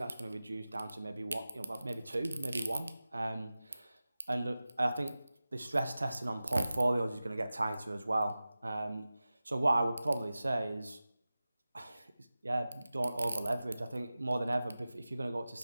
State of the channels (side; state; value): both; inverted; correlation -0.96